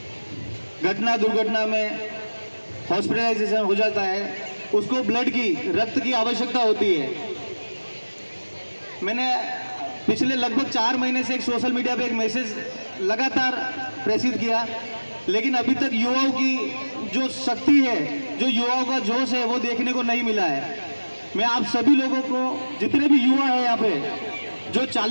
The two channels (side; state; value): both; inverted; correlation -1.00